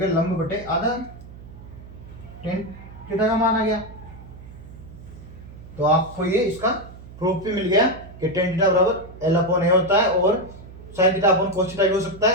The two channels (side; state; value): right; noise; hum, 17 dB below the sound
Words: लंब बटे आधार, टेन थीटा का मान आ गया। तो आपको ये इसका प्रूफ भी मिल गया कि टेन थीटा बराबर एल अपॉन ए होता है और sine theta upon cos theta भी हो सकता